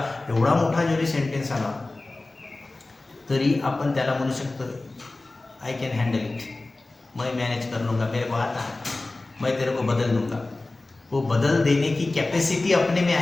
एवढा मोठा जरी सेंटेन्स आला तरी आपण त्याला म्हणू शकतो आय कॅन हँडल इट, मैं मैनेज कर लूँगा, मेरे को आता है, मैं तेरे को बदल दूंगा. वो बदल देने की कॅपॅसिटी अपने में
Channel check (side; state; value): right; quieter; 3.1 dB